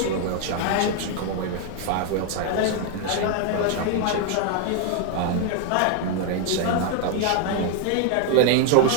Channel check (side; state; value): both; different; correlation 0.00